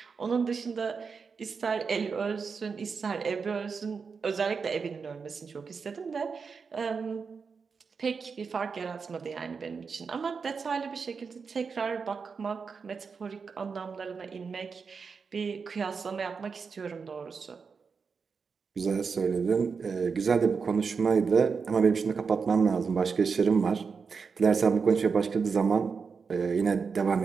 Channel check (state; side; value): quieter; left; 5.4 dB